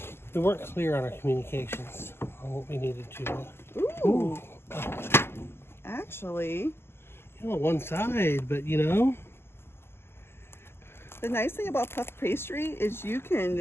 weren't clear on our communications on what we needed to. Ooh. Actually, you know, one side, but you know. The nice thing about puff pastry is you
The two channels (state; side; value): late; right; 0.12 ms